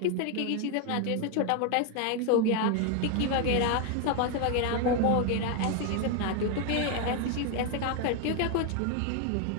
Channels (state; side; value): different; both; correlation 0.01